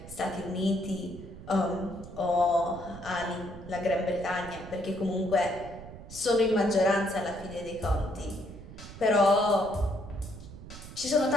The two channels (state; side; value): noise; right; rumble, 14 dB below the sound